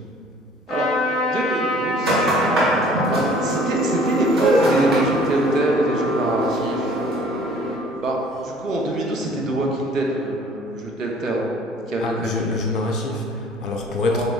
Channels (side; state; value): both; normal; correlation 0.53